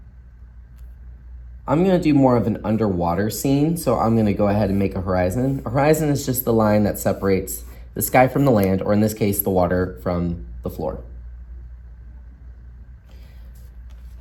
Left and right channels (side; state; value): both; identical; correlation 1.00